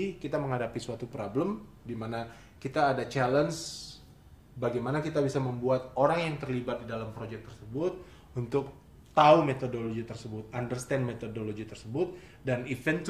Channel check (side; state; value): both; identical; correlation 1.00